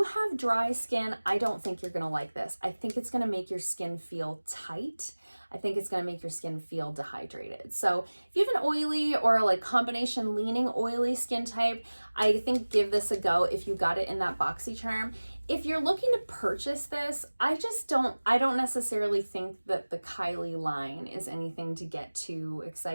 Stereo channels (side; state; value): both; inverted; correlation -1.00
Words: have dry skin, I don't think you're gonna like this. I think it's gonna make your skin feel tight. I think it's gonna make your skin feel dehydrated. So if you have an oily or combination leaning oily skin type, I think give this a go if you got it in that BoxyCharm. If you're looking to purchase this, I don't necessarily think that the Kylie line is anything to get too